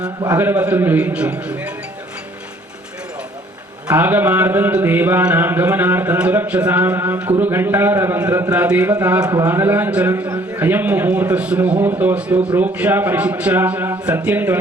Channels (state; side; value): normal; both; correlation 0.59